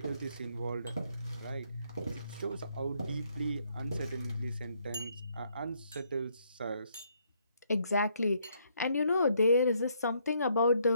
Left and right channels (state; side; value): inverted; both; correlation -0.71